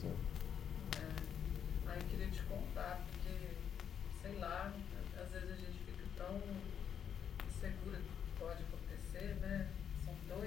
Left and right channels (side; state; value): right; quieter; 8.3 dB